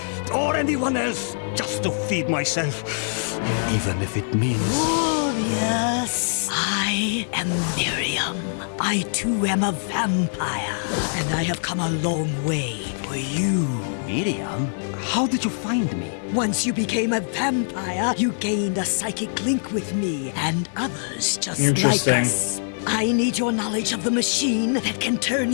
or anyone else just to feed myself, even if it means... Glorious! I am Miriam. I too am a vampire, and I have come a long way for you. Miriam? How did you find me? Once you became a vampire, you gained a psychic link with me and others just like Interesting. us. I need your knowledge of the machine that can turn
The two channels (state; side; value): silent; right; 63 dB below the other